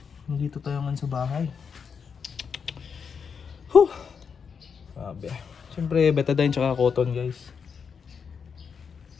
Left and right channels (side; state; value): right; quieter; 6.3 dB